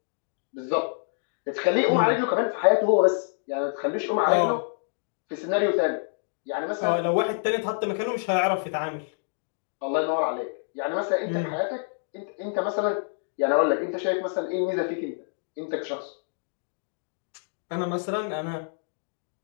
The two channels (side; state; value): right; silent; digital silence